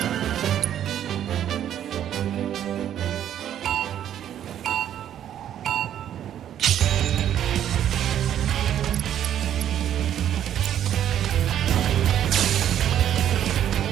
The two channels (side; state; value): left; quieter; 10.5 dB